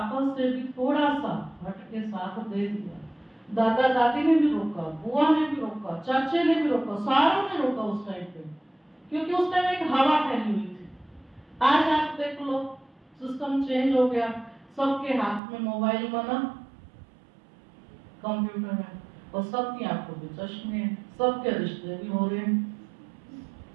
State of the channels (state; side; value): drops out; left; at 15.4 s